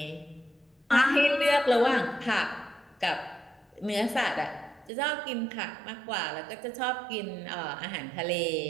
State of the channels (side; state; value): left; drops out; at 4.9 s